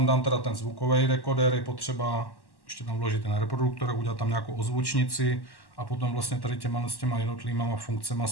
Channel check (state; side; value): late; right; 1.1 ms